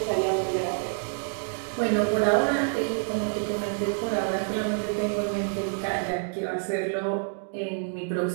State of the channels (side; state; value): left; silent; digital silence